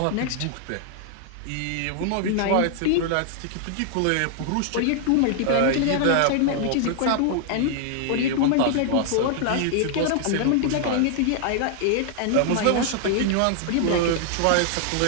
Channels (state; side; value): different; both; correlation 0.00